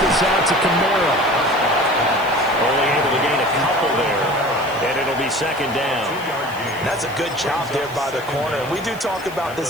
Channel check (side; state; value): left; noise; hiss, 21 dB below the sound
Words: out to Kamara. Only able to gain a couple there, and it'll be 2nd down. That's a good job there by the corner. We do talk about